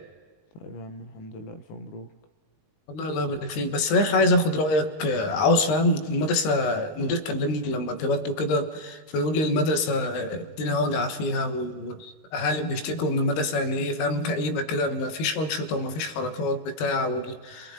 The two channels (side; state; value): right; late; 19 ms